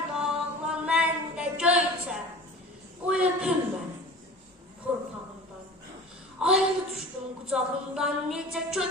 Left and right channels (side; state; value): both; normal; correlation 0.40